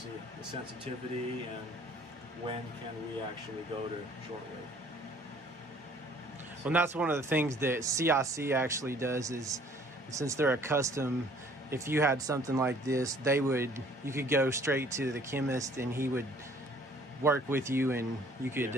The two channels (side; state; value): both; normal; correlation 0.56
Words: the sensitivity and when can we actually go to shortwave. Well, and that's one of the things that CIC actually does is, since they're a custom, if you had something like this, you could go straight to the chemist and he would work with you and you could